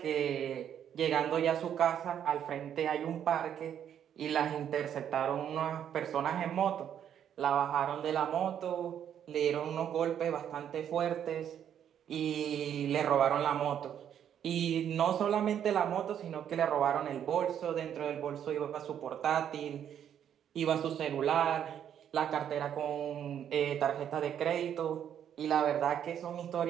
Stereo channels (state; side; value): quieter; left; 9.4 dB